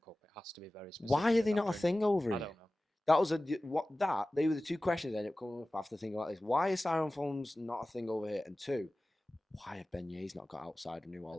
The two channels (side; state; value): both; normal; correlation 0.97